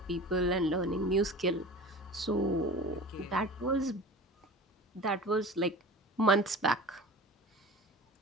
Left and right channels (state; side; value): normal; both; correlation 0.37